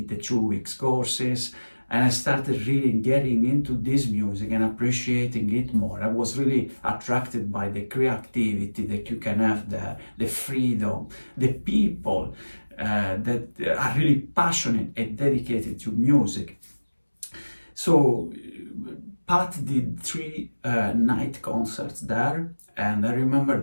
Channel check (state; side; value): inverted; both; correlation -1.00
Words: 2 weeks courses, and I started really getting into this music and appreciating it more. I was really attracted by the creativity that you can have there, the freedom, the people that are really passionate and dedicated to music. So Pat did 3 night concerts there, and I remember